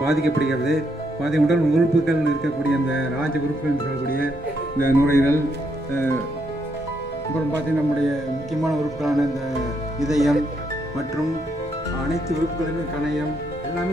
உடல் உறுப்புகள் இருக்கக்கூடிய அந்த ராஜ உறுப்புகள் சொல்லக்கூடிய இந்த நுரையீரல், அப்புறம் பார்த்தீங்கன்னா நம்முடைய முக்கியமான உறுப்புகளான இந்த இதயம் மற்றும் அனைத்து உறுப்புகளுமே, கணையம்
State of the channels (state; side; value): normal; both; correlation 0.76